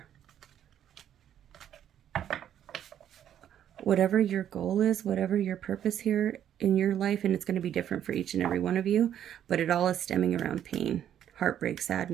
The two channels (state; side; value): quieter; left; 10.2 dB